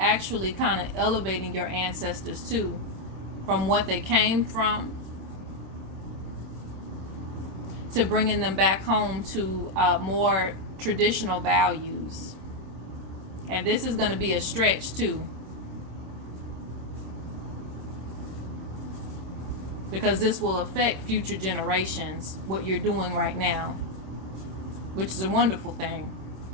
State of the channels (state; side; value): late; left; 26 ms